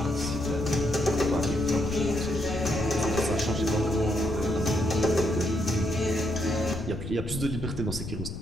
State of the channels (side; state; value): left; noise; rumble, 7 dB below the sound